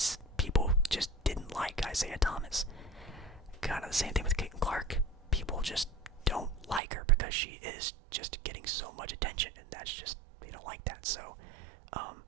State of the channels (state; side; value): drops out; left; at 6.8 s